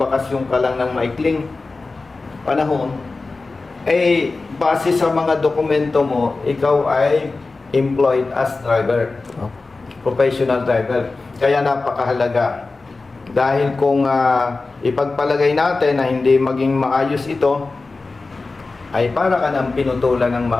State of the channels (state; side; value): quieter; right; 3.7 dB